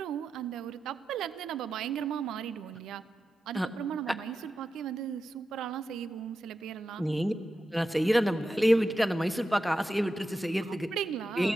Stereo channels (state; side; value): normal; both; correlation 0.90